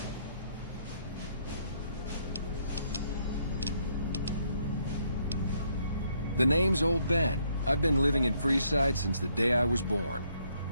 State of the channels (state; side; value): inverted; both; correlation -0.71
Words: The name's Old Ben. I've been living in Freeside since the day I was born.